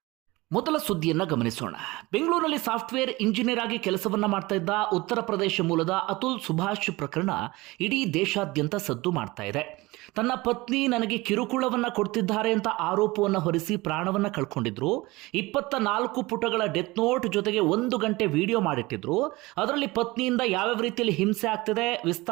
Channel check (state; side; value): quieter; left; 21.4 dB